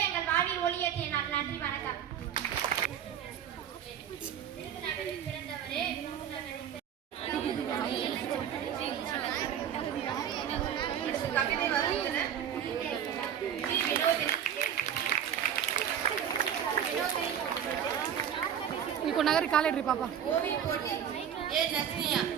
எங்கள் வாழ்வில் ஒளியேற்றிய நாள். நன்றி, வணக்கம். விருதுநகரில் பிறந்தவரே, கவிதை வசந்தனர் வினோதினி ఇంకో నగరి కాలేడ్రి పాప ஓவிய போட்டி ஏ நஸ்ரியா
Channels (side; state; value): left; quieter; 9.1 dB